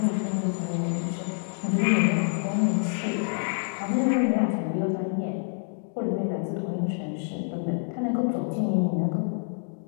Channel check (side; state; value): right; silent; 60 dB below the other